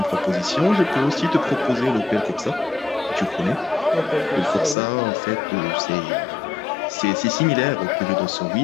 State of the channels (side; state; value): right; drops out; at 4.8 s